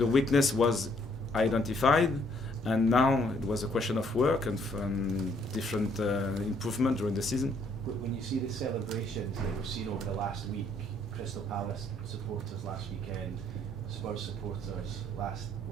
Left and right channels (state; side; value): normal; both; correlation 0.67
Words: weakness was identified, and now it was a question of work and different improvement during the season. When you see the celebrations that we've seen over the last week, Crystal Palace supporters last weekend, Spurs supporters